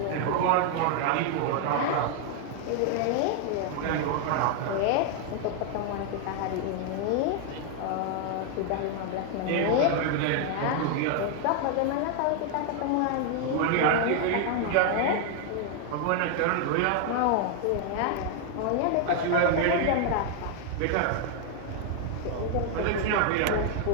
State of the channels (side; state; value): both; different; correlation 0.00